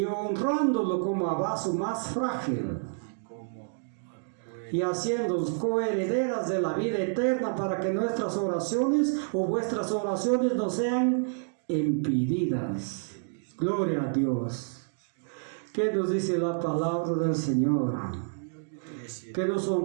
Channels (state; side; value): silent; left; digital silence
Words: honrándolo como a vaso más frágil y haciéndolos coherederas de la vida eterna para que nuestras oraciones o vuestras oraciones no sean impedidas. Gloria a Dios. ¿Qué nos dice la palabra del Señor? Que nos